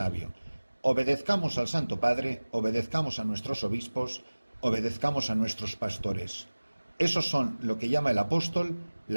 Obedezcamos al Santo Padre, obedezcamos a nuestros obispos, obedezcamos a nuestros pastores. Esos son lo que llama el apóstol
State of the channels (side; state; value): both; inverted; correlation -1.00